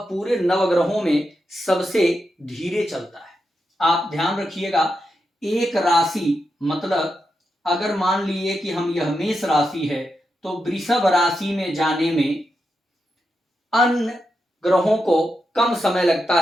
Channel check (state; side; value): normal; both; correlation 0.87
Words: पूरे नवग्रहों में सबसे धीरे चलता है। आप ध्यान रखिएगा, एक राशि मतलब अगर मान लीजिए कि हम यह मेष राशि है तो वृषभ राशि में जाने में अन्य ग्रहों को कम समय लगता